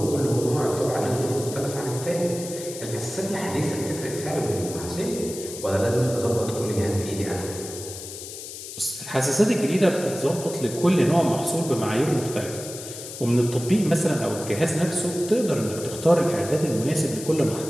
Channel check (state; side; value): noise; left; hiss, 11 dB below the sound